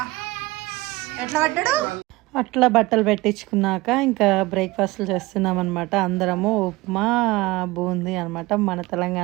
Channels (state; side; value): quieter; left; 20.7 dB